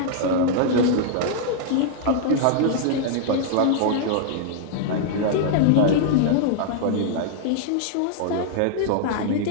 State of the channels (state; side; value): different; both; correlation -0.01